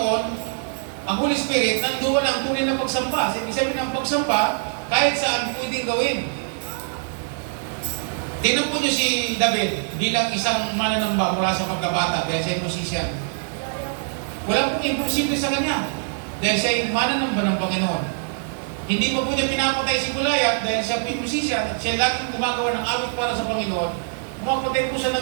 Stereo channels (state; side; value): silent; left; digital silence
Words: ang Holy Spirit, nandoon ang tunay na pagsamba. Ibig sabihin ng pagsamba, kahit saan pwedeng gawin. Tingnan po niyo si David bilang isang mananamba mula sa pagkabata dahil siya ay musician. Wala pong imposible sa kanya dahil siya ay mananamba ng Panginoon. Hindi pa po niya pinapatay si Goliath dahil siya ay musician at siya laging gumagawa ng awit para sa Panginoon. Pumapatay po siya